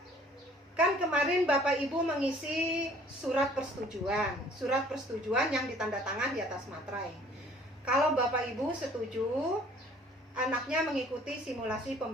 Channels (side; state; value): both; normal; correlation 0.55